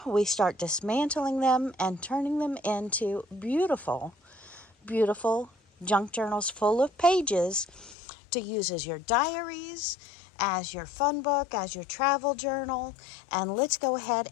we start dismantling them and turning them into beautiful, beautiful junk journals full of pages to use as your diaries, as your fun book, as your travel journal. And let's go ahead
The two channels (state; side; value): drops out; right; at 8.0 s